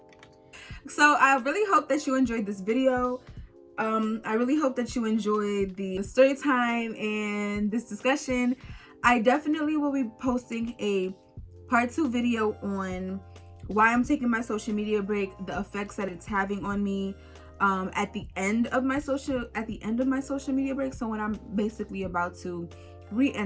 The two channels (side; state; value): both; identical; correlation 1.00